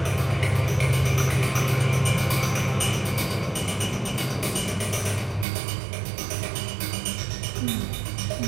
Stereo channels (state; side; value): drops out; left; at 5.5 s